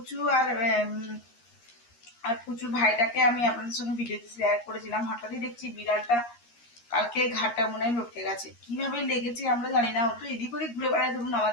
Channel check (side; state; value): right; late; 13 ms